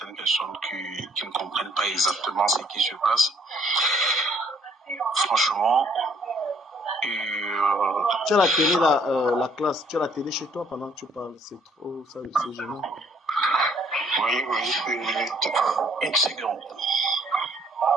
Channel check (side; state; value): both; normal; correlation 0.63